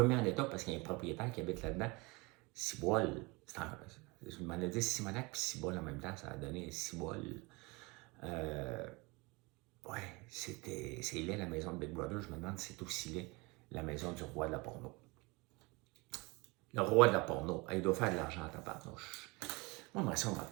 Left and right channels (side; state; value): left; quieter; 25.9 dB